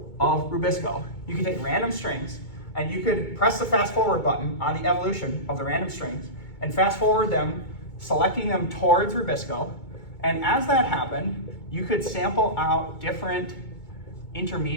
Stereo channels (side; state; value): right; late; 2.2 ms